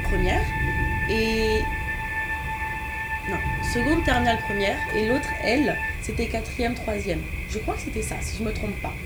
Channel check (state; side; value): identical; both; correlation 1.00